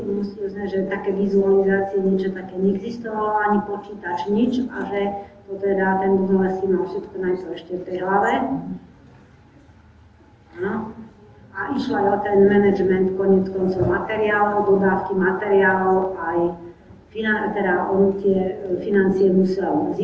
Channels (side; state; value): both; identical; correlation 1.00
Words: musí uznať, že také vizualizácie, niečo také neexistovalo, ani počítač, nič, a že to teda ten Brunelleschi mal všetko najprv ešte v tej hlave. No. A išlo aj o ten management koniec koncov materiálov, dodávky materiálov, aj teda on tie financie musel